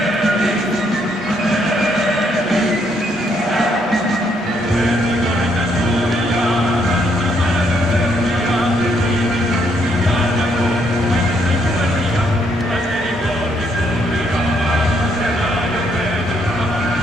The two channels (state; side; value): normal; both; correlation 0.72